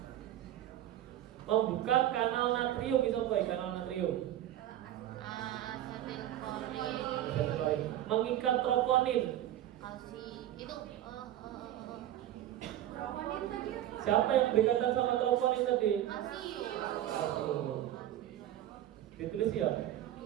Membuka kanal natrium, bisa apa ya kanal natrium? asetilkolin, Mengikat troponin. kalsi, itu Siapa yang berkaitan sama troponin tadi? kalsium, Ditulis ya.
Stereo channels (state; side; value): quieter; left; 12.6 dB